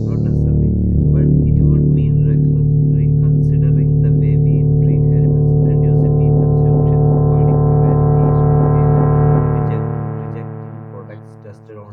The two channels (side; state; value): both; identical; correlation 1.00